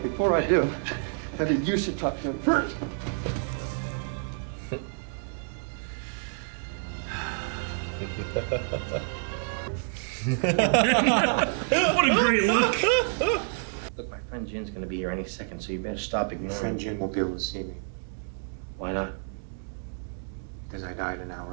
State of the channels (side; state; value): left; silent; 59 dB below the other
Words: before I do, I think you should talk to him first. What a great look! Look, my friend Jin's gonna be here any second, so you better stop Your ignoring friend me. Jim won't be able to see me Why not? because I died an